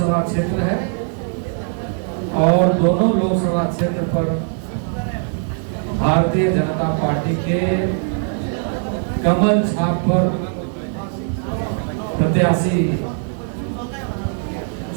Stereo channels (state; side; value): silent; left; 57 dB below the other